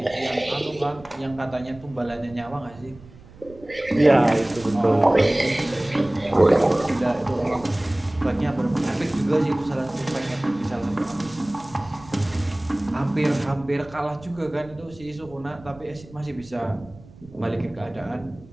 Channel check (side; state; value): right; noise; rumble, 21 dB below the sound